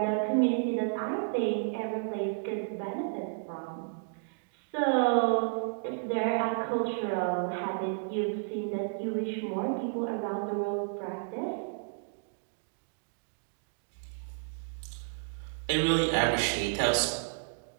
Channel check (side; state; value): left; silent; digital silence